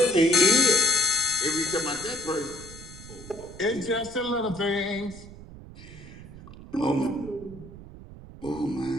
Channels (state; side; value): noise; right; rumble, 16 dB below the sound